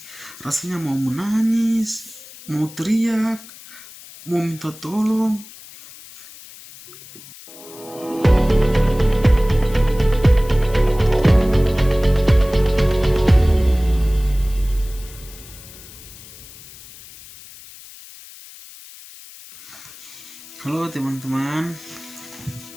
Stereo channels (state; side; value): noise; left; hiss, 19 dB below the sound